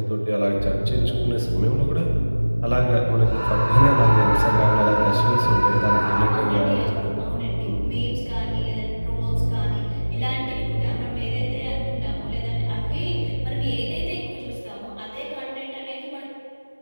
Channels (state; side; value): inverted; both; correlation -1.00